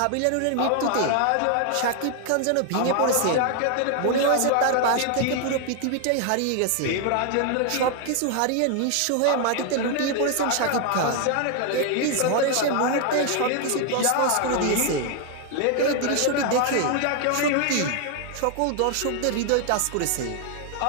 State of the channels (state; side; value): different; both; correlation 0.00